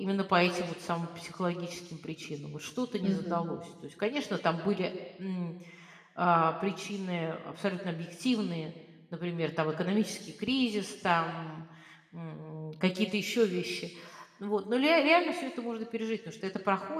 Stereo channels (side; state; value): both; identical; correlation 1.00